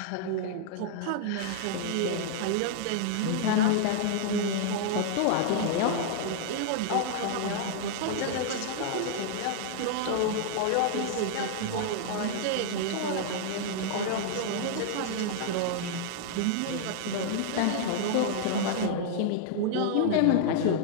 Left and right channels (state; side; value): different; both; correlation -0.01